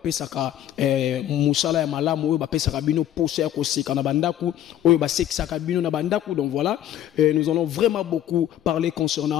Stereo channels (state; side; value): quieter; right; 11.6 dB